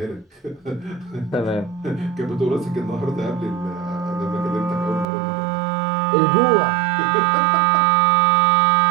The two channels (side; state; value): left; drops out; at 5.1 s